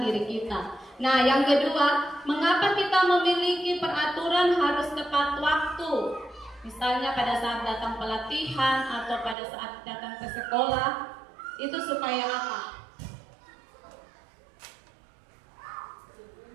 diri kita. Nah, yang kedua, mengapa kita memiliki peraturan harus tepat waktu? Misalnya pada saat datang pelatihan atau pada saat datang ke sekolah, itu supaya apa?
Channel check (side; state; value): left; drops out; at 9.3 s